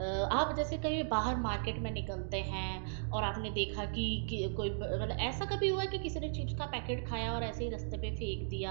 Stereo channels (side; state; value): left; silent; digital silence